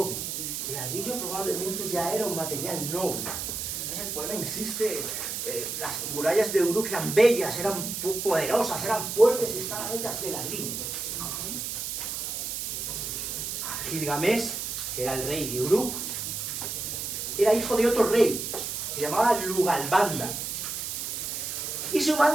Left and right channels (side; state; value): right; noise; hiss, 4 dB below the sound